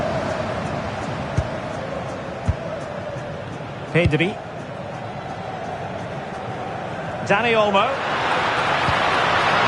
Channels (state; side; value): identical; both; correlation 1.00